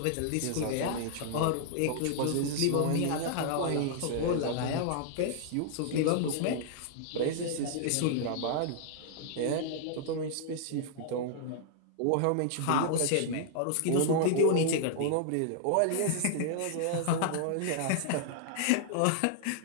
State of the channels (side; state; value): both; different; correlation -0.01